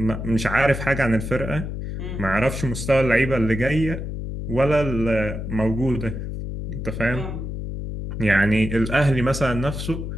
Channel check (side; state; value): left; noise; hum, 6 dB below the sound